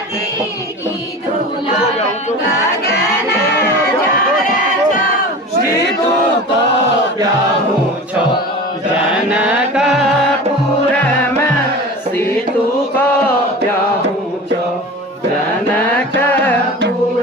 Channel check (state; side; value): normal; both; correlation 0.34